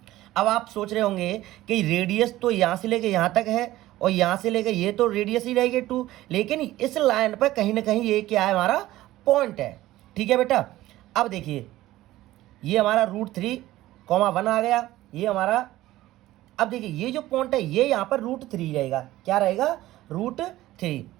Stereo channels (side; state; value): left; quieter; 15.9 dB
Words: अब आप सोच रहे होंगे कि रेडियस तो यहाँ से लेके यहाँ तक है और यहाँ से लेके ये तो रेडियस ही रहेगी 2, लेकिन इस लाइन पर कहीं ना कहीं ये क्या है? हमारा पॉइंट है, ठीक है बेटा। अब देखिए, ये हमारा √3,1 आ गया, ये हमारा। अब देखिए, ये जो पॉइंट है ये यहाँ पर √3 रहेगा। क्या रहेगा? √3।